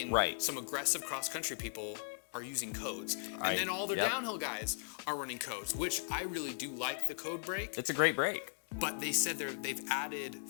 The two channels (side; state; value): right; silent; digital silence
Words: some aggressive cross-country people are using codes. And then all their downhill guys are running codes, which I really do like the code brake. It's a great brake. But they said they've added